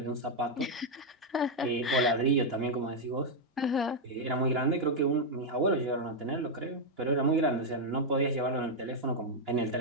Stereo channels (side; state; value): both; normal; correlation 0.00